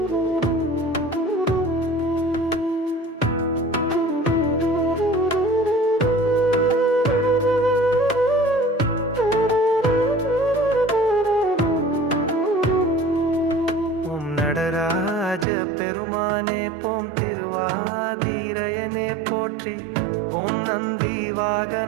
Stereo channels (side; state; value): left; drops out; at 15.5 s